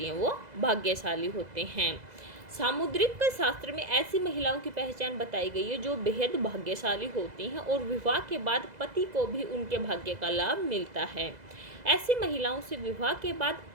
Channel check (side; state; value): left; late; 2.0 ms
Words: हैं वो भाग्यशाली होते हैं। सामुद्रिक शास्त्र में ऐसी महिलाओं की पहचान बताई गई है जो बेहद भाग्यशाली होती हैं और विवाह के बाद पति को भी उनके भाग्य का लाभ मिलता है। ऐसी महिलाओं से विवाह के बाद